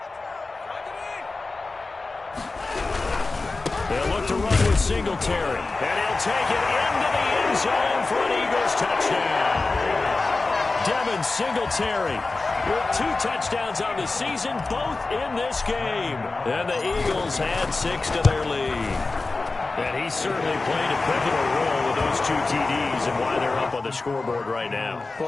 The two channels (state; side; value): quieter; right; 3.6 dB